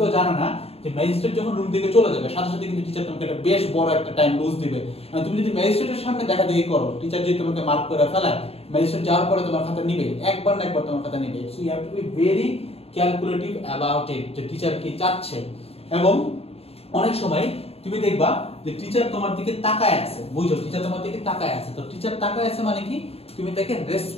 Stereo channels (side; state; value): right; late; 0.29 ms